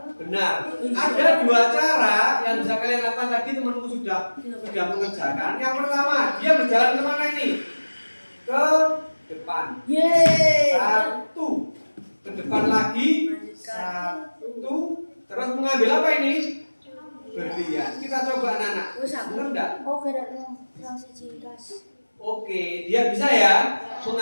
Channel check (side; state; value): both; inverted; correlation -1.00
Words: benar. Ada 2 cara yang bisa kalian lakukan. Tadi temanku sudah mengerjakan. Yang pertama, dia berjalan kemana ini? Ke depan. 1, ke depan lagi 1, terus mengambil apa ini? Berlian. Kita coba anak-anak. Benar enggak? Oke, dia bisa ya